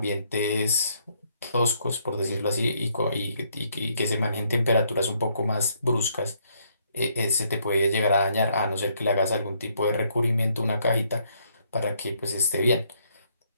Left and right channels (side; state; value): both; inverted; correlation -0.70